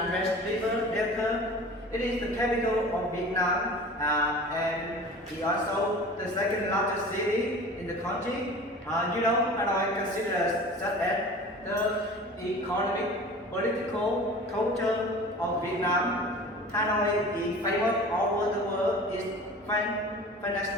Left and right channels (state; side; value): normal; both; correlation 0.40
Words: West River Delta. It is the capital of Vietnam and it also the second largest city in the country. Hanoi considered such as the economic, political, culture of Vietnam. Hanoi is famous all over the world. Its